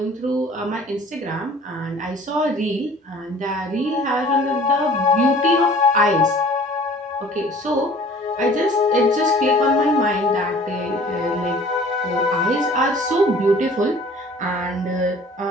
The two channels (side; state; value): both; normal; correlation 0.50